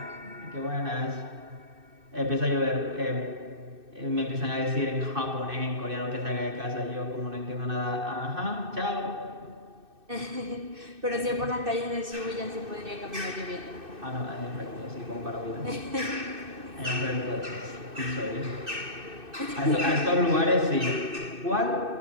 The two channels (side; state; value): left; late; 2.6 ms